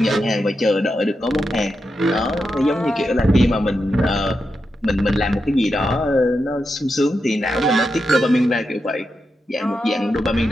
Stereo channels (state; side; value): normal; both; correlation 0.87